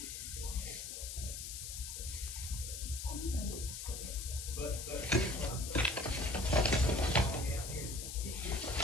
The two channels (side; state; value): left; noise; hiss, 7 dB below the sound